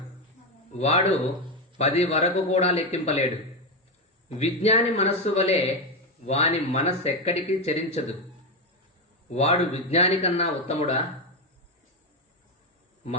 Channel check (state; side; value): normal; both; correlation 0.10